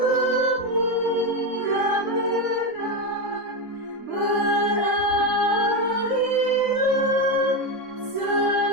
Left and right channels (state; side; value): late; right; 3.6 ms